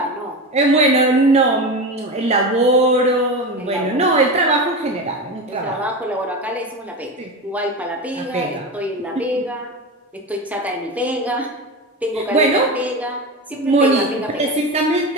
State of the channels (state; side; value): normal; both; correlation 0.23